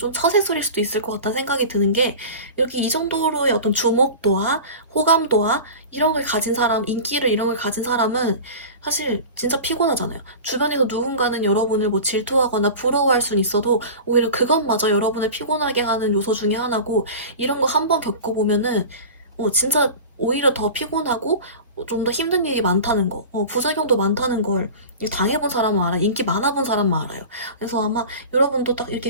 처세술일 수도 있을 것 같다는 생각이 드는 게, 이렇게 이 정도로의 어떤 주목도와 호감도와 이런 걸 가진 사람, 인기를 이런 걸 가진 사람은 사실 진짜 피곤하잖아요. 주변에서 누군가는 여러분을 뭐 질투하거나 부러워할 수는 있어도 오히려 그것마저 여러분을 피곤하게 하는 요소 중에 하나고, 이런 거 한번 겪어보면은 진짜 오히려 더 피곤하고 좀 더 힘든 일이 많다는 거, 부작용도 많다는 걸 당해본 사람은 알아요. 인기 많아본 사람만 알아요. 그래서 아마 여러분도 딱 이렇게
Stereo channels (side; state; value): both; inverted; correlation -0.34